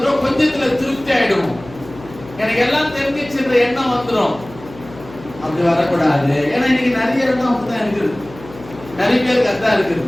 கொஞ்சத்துல திருப்தி ஆயிடும். எனக்கு எல்லாம் தெரிஞ்சிச்சுன்ற எண்ணம் வந்துடும். அப்படி வரக்கூடாது. ஏன்னா இன்னைக்கு நிறைய இடம் அப்படிதான் இருக்குது, நிறைய பேருக்கு அதான் இருக்குது.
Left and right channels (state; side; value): noise; left; hum, 18 dB below the sound